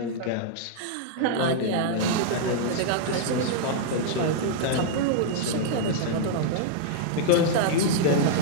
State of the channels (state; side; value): different; both; correlation -0.02